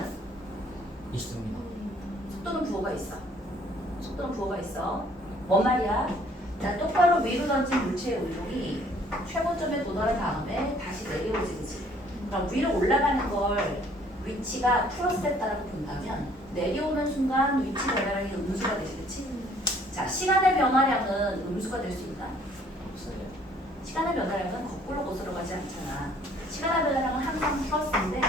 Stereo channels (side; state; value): both; normal; correlation 0.60